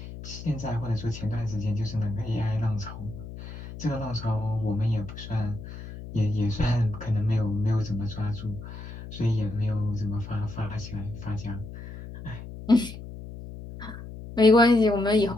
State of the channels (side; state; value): left; noise; hum, 12 dB below the sound